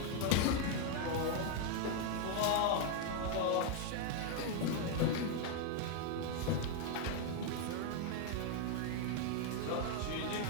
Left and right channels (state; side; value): different; both; correlation 0.00